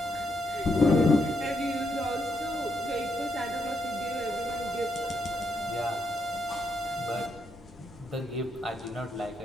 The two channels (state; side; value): normal; both; correlation 0.79